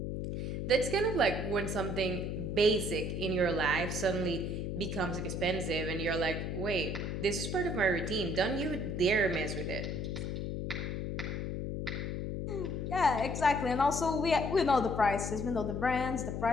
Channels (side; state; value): left; noise; hum, 3 dB below the sound